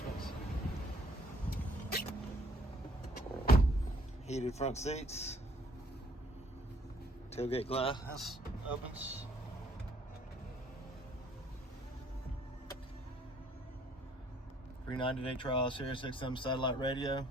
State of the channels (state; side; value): normal; both; correlation 0.63